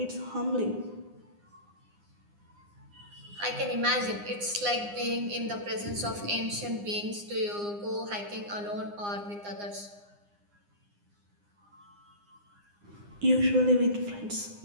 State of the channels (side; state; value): left; late; 9.8 ms